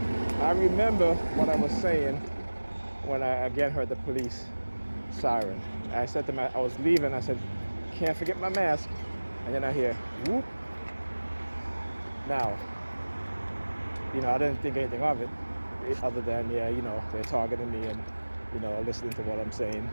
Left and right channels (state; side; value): inverted; both; correlation -1.00